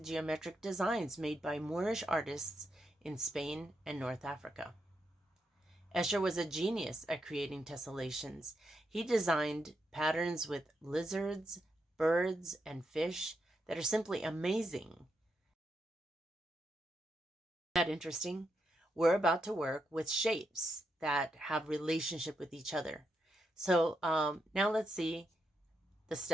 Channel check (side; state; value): both; normal; correlation 0.82